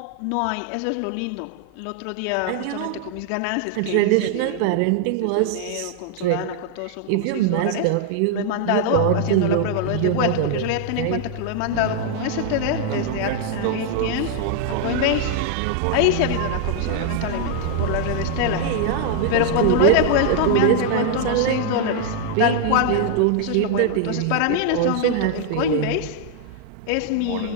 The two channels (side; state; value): both; different; correlation 0.00